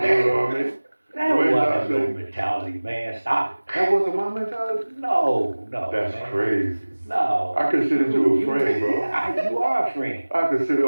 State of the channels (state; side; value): inverted; both; correlation -1.00